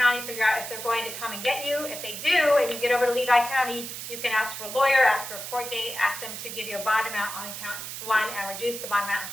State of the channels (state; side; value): noise; right; hiss, 8 dB below the sound